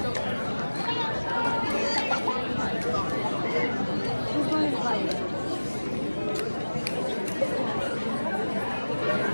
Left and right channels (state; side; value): inverted; both; correlation -1.00